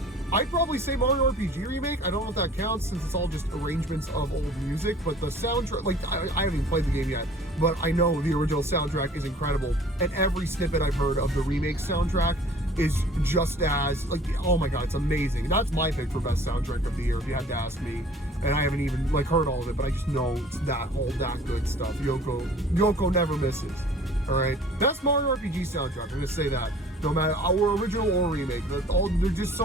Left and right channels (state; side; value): normal; both; correlation 0.50